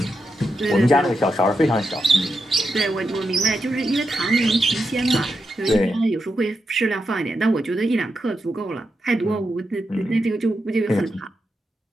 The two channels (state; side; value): normal; both; correlation 0.86